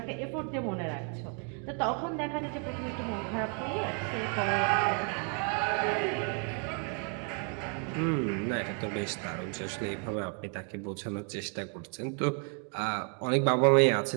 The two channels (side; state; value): left; quieter; 37.5 dB